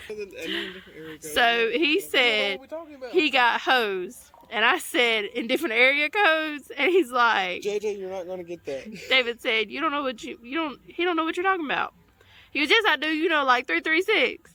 So he said he got hosed, and I said in different area codes, and he's like, JJ, you're not gonna get that. David said, he don't know what you're talking about. He goes, yes I do, like 336.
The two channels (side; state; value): both; identical; correlation 1.00